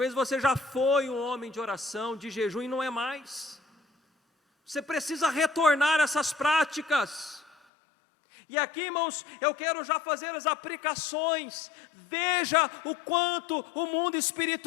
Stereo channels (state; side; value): drops out; right; at 7.6 s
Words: você já foi um homem de oração, de jejum, e não é mais. Você precisa retornar essas práticas. E aqui, irmãos, eu quero já fazer as aplicações. Veja o quanto o mundo